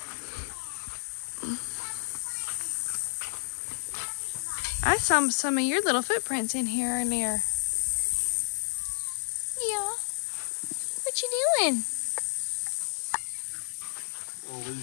I saw some of your little footprints in here earlier. Yeah. What you doing? We'll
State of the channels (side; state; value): right; silent; digital silence